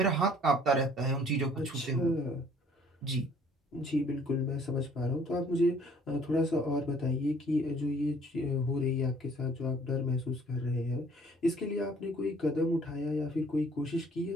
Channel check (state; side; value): normal; both; correlation 0.57